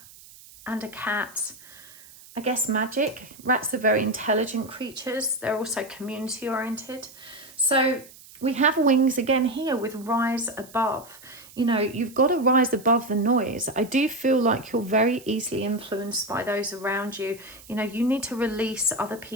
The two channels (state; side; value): noise; right; hiss, 21 dB below the sound